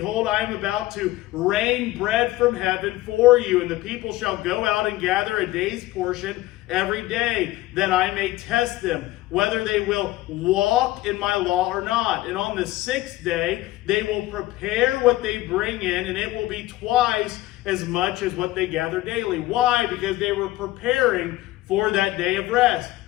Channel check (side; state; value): right; quieter; 17.4 dB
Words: I am about to rain bread from heaven for you, and the people shall go out and gather a day's portion every day, that I may test them, whether they will walk in my law or not. And on the sixth day they will prepare what they bring in, and it will be twice as much as what they gather daily." Why? Because they were preparing for that day of rest.